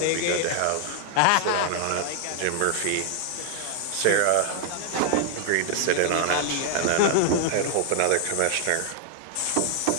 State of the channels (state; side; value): different; both; correlation 0.00